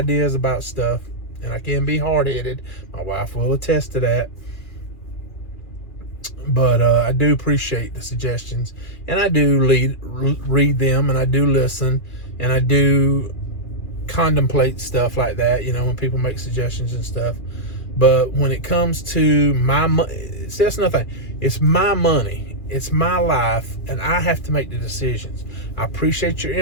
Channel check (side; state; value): right; late; 2.4 ms